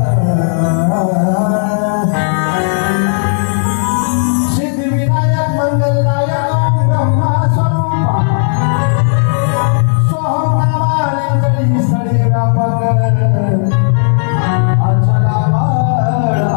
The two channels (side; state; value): right; silent; digital silence